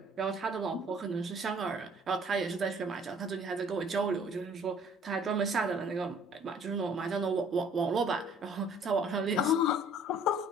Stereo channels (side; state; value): both; normal; correlation 0.55